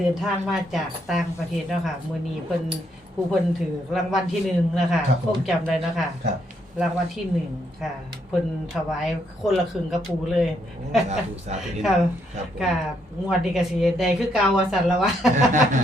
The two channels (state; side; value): normal; both; correlation 0.75